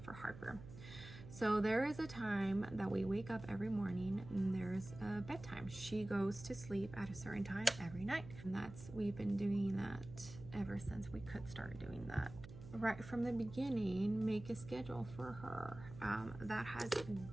for Harper. So there is a time that we wake up every morning and there's a bedtime. She goes to sleep at a certain time every night. And we've been doing that ever since we could start doing that. Right from the beginning, make a schedule for her. That has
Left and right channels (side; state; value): right; noise; hum, 14 dB below the sound